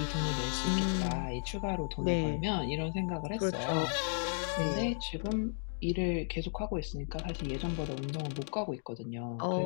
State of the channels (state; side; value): silent; right; digital silence